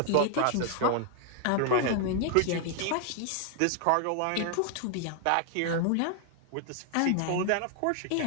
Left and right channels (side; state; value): both; different; correlation 0.00